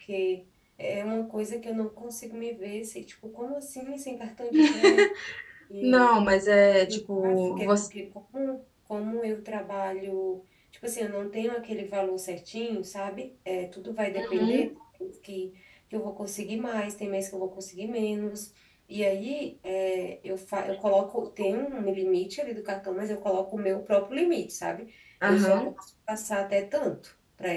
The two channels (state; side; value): identical; both; correlation 1.00